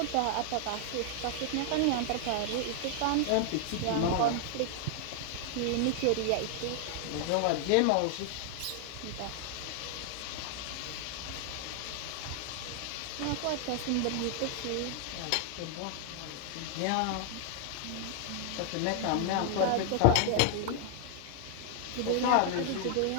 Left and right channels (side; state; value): both; different; correlation 0.00